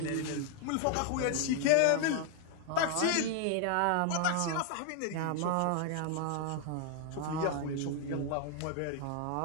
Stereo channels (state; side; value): different; both; correlation 0.00